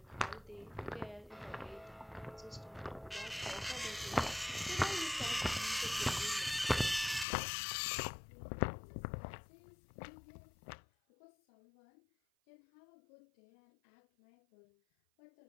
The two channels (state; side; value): drops out; right; at 7.2 s